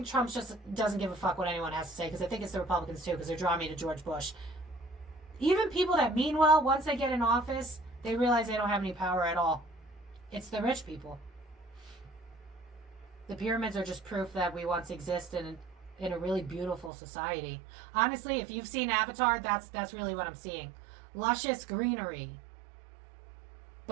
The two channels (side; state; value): left; drops out; at 16.9 s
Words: Trump just doesn't give a fuck what anyone has to say, because I think it's the Republicans too, because they're drawing me to George Bush. Even people that mean well, once they get in office, they realize they don't have any power at all. It's the rich people. The pyramids are just proof that we once existed in a really beautiful society. Honestly, if you've seen Avatar, that's really what I'm seeing. Luscious greenery.